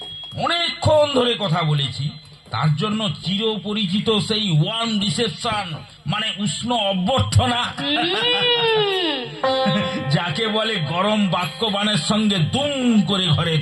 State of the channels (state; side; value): identical; both; correlation 1.00